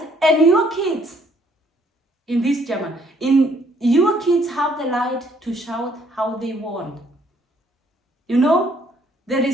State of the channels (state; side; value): normal; both; correlation 0.65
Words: and your kids in this German, in your kids have the right to shout how they want. You know, there